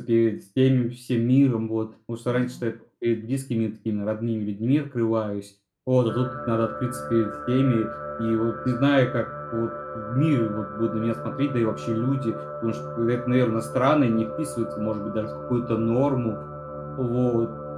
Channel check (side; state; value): both; identical; correlation 1.00